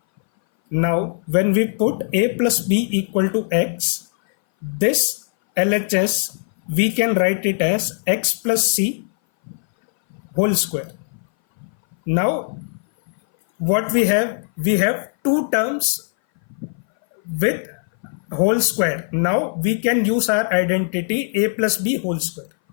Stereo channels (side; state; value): right; silent; 59 dB below the other